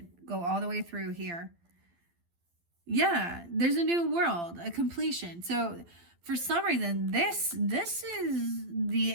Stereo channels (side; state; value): left; late; 12 ms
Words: go all the way through here. Yeah, there's a new world, a completion. So for some reason, this is the